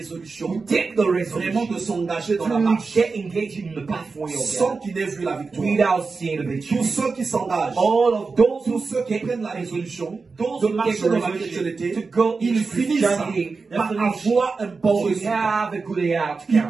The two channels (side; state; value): left; quieter; 4.4 dB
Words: who take the vraiment de resolution s'engager dans la to marche get engaged in the pathway of sans God qu'ils n'aient vu la victoire. without seeing the victory. Tous ceux qui s'engagent, All of those tous who ceux qui take prennent la résolution those de who take marcher the dans la resolution chrétienté, to go ils into finissent Christianity, par that's avoir un bon to résultat. have a good outcome. Il